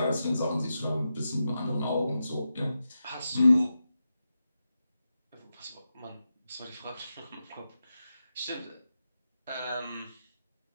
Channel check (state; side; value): inverted; both; correlation -0.89